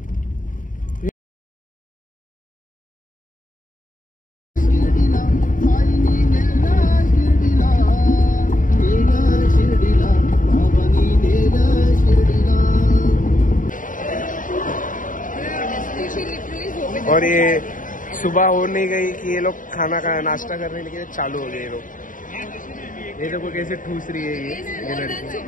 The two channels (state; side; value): late; right; 0.38 ms